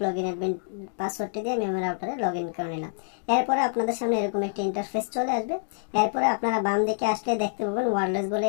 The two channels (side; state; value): right; silent; digital silence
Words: লগইন অ্যাডমিন পাসওয়ার্ডটি দিয়ে আমি আমার রাউটারে লগইন করে নিলাম। এরপরে আপনাদের সামনে এরকম একটি ইন্টারফেস চলে আসবে। এরপরে আপনারা বাম দিকে আসলে দেখতে পাবেন ওয়্যারলেস বলে